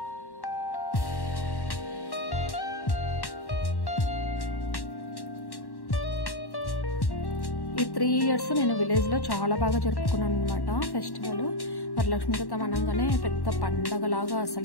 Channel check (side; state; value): right; late; 1.1 ms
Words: ఈ 3 years నేను విలేజ్లో చాలా బాగా జరుపుకున్నాను అనమాట ఫెస్టివల్. వరలక్ష్మి వ్రతం అనగానే పెద్ద పండగలాగా,